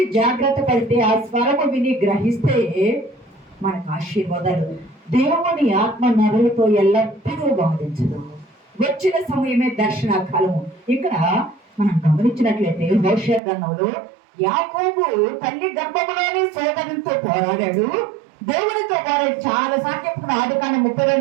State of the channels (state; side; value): drops out; left; at 13.4 s